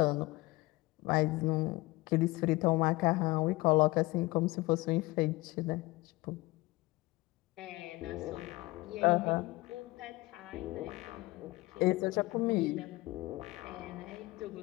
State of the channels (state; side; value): quieter; right; 21.4 dB